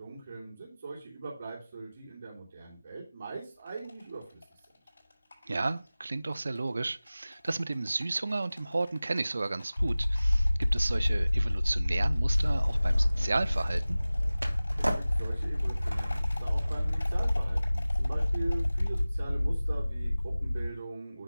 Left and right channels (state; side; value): inverted; both; correlation -0.98